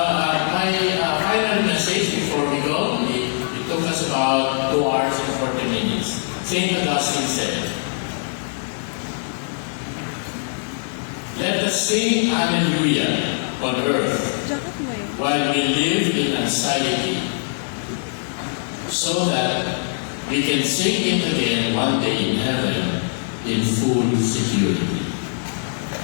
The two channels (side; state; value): right; silent; 60 dB below the other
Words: my final message before we go, it took us about 2 hours and 40 minutes. St. Augustine said, "Let us sing Hallelujah on earth while we live in anxiety, so that we can sing it again one day in heaven in full security."